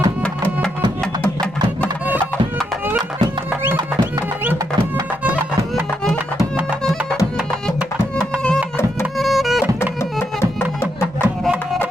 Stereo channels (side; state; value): both; normal; correlation 0.80